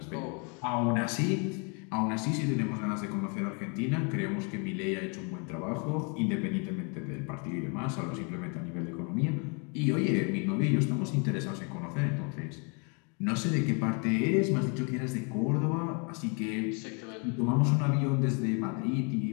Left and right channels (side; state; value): right; quieter; 35.7 dB